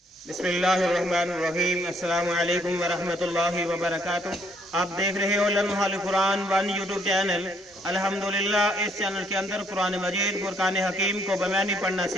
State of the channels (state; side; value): normal; both; correlation 0.67